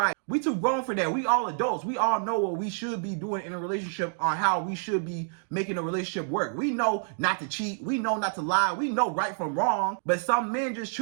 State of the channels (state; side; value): silent; left; digital silence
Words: We too grown for that. We all adults. We all know what we should be doing in a relationship, on how we should be making a relationship work. We know not to cheat. We know not to lie. We know right from wrong. But some men just